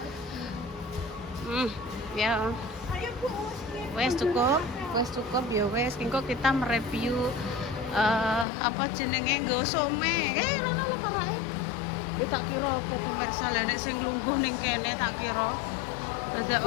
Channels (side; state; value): right; drops out; at 8.5 s